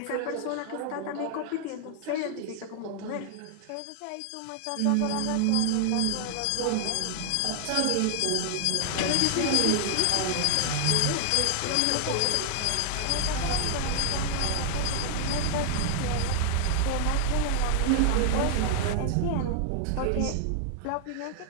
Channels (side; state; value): both; different; correlation 0.00